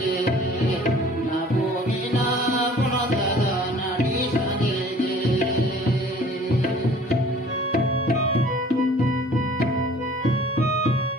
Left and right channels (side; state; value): both; normal; correlation 0.51